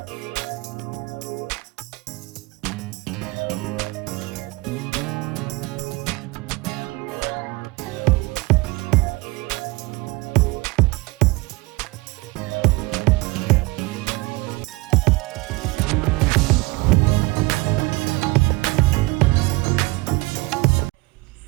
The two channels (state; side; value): quieter; left; 23.1 dB